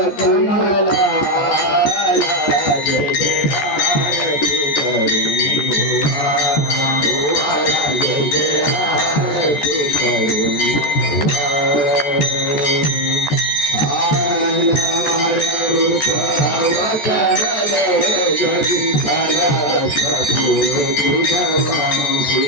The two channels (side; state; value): right; late; 14 ms